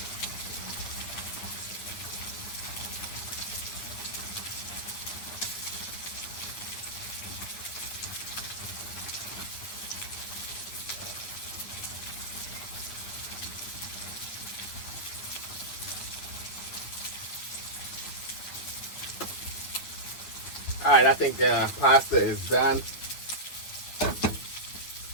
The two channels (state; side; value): late; right; 9.7 ms